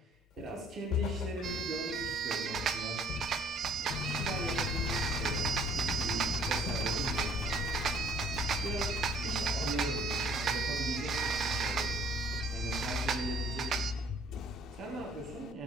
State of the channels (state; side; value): normal; both; correlation 0.58